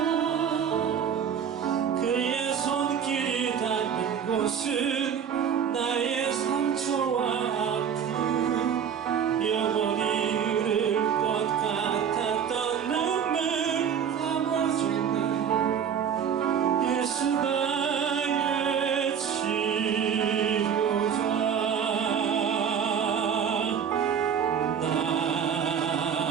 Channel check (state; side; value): quieter; left; 7.8 dB